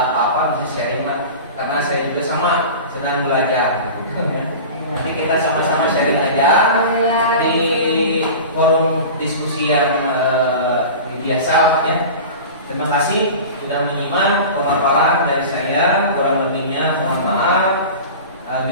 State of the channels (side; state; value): both; inverted; correlation -0.34